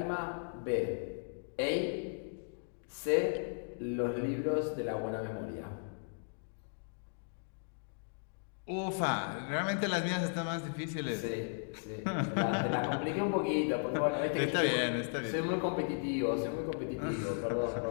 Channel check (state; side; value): silent; right; digital silence